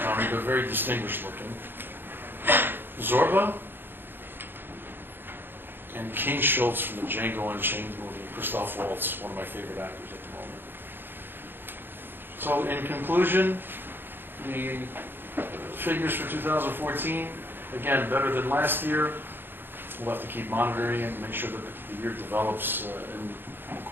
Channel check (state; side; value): late; left; 0.099 ms